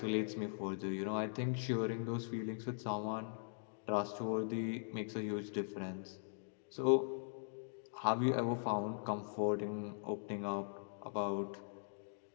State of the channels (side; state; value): right; silent; digital silence